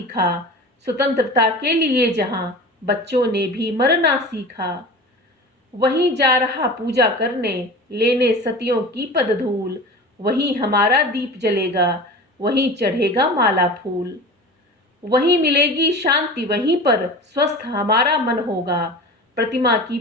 स्वतंत्रता के लिए जहां बच्चों ने भी मरना सीखा। वहीं जा रहा पूजा करने लेने सतियों की पद धूल, वहीं हमारा दीप जलेगा वहीं चढ़ेगा माला फूल। वहीं मिलेगी शांति वहीं पर स्वस्थ हमारा मन होगा, प्रतिमा की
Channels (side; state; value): both; normal; correlation 0.34